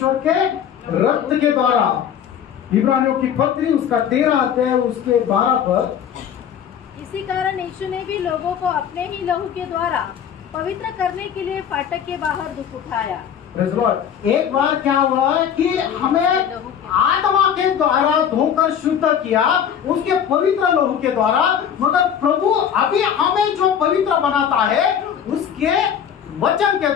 के रक्त के द्वारा। इब्रानियों की पत्री उसका 13 अध्याय उसके 12 पर। इसी कारण यीशु ने भी लोगों को अपने ही लहू के द्वारा पवित्र करने के लिए फाटक के बाहर दुख उठाया। Praise the Lord। एक बार क्या हुआ कि हमें आत्मा के द्वारा धोकर शुद्ध किया, उसके पवित्र लहू के द्वारा, मगर प्रभु अभी हमें जो पवित्र बनाता है उसके वचन के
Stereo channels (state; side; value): quieter; right; 8.6 dB